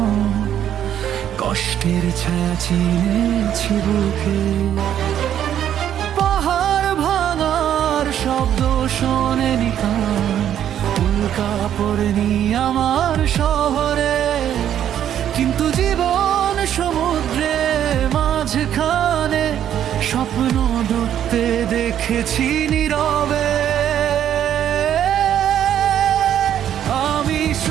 কষ্টের ছায়া চিনেছি বুকে। পাহাড় ভাঙার শব্দ শোনেনি কান, উল্কা পড়েনি আমার শহরে, কিন্তু জীবন সমুদ্রে মাঝখানে স্বপ্ন ডুবতে দেখেছি নীরবে। আমি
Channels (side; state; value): left; quieter; 10.3 dB